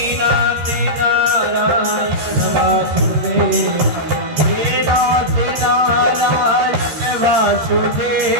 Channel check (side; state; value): left; late; 13 ms